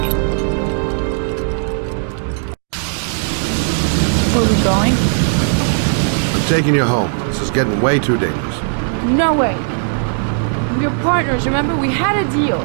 Where are we going? I'm taking you home. This is getting way too dangerous. No way. We're partners, remember? We had a deal.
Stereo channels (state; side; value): silent; left; 68 dB below the other